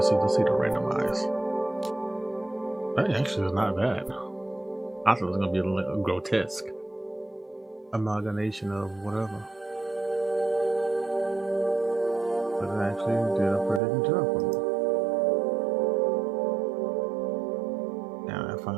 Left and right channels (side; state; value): left; drops out; at 13.8 s